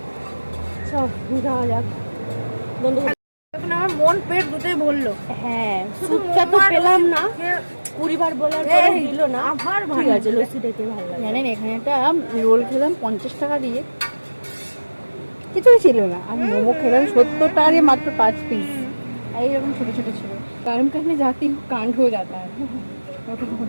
সব যাওয়া যাক বন্ধু। এখন আমার মন পেট দুটোই ভরলো। হ্যাঁ, স্যুপটা তো পেলাম না, 20 বার বলার পরে দিল না। আবার ঠিক আছে, লস্যিটাকে ভালো লাগে। জানেন এখানে একটা রোল খেলাম 50 টাকা দিয়ে, কিছুই ছিল না। আর মোমো খেলাম 70 টাকা দিয়ে মাত্র 5 পিস। এইরকম ছোট ছোট ছিল। গরম करने जाती हूँ कांड हो जाता है।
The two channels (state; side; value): inverted; both; correlation -1.00